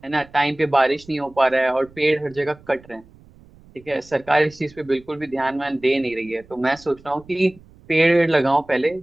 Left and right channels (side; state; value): right; noise; rumble, 25 dB below the sound